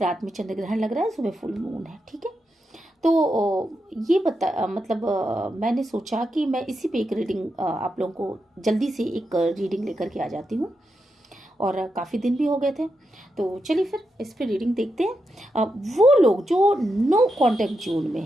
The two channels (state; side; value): normal; both; correlation 0.86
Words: में चंद्र ग्रहण लग रहा है, सुबह फुल मून है। ठीक है, तो ये मैंने सोचा कि मैं इसी पे एक रीडिंग आप लोगों को जल्दी से एक रीडिंग लेकर के आ जाती हूँ, और काफ़ी दिन भी हो गए थे। तो चलिए फिर इस पे रीडिंग देखते हैं। वो लोग जो नो कांटेक्ट जोन में